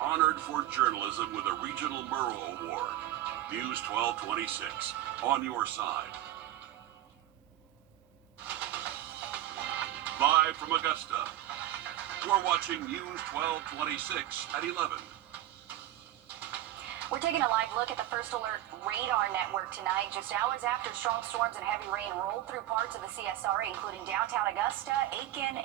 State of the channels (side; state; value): left; quieter; 13.9 dB